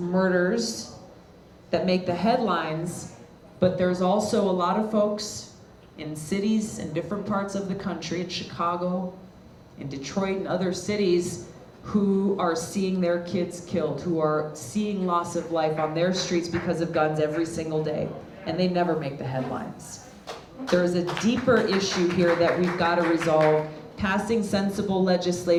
that make the headlines, but there's also a lot of folks in cities in different parts of the country, in Chicago, in Detroit, and other cities, who are seeing their kids killed, who are seeing loss of life on their streets because of guns every single day, and they never make the headlines. There's a deeper issue here that we've got to resolve. Passing sensible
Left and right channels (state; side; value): identical; both; correlation 1.00